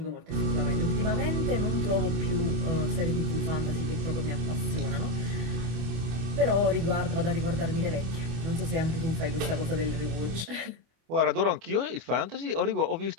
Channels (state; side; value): late; left; 24 ms